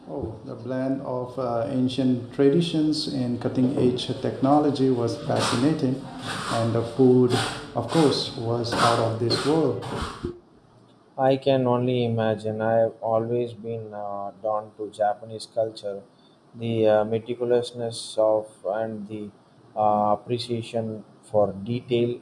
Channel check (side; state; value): both; identical; correlation 1.00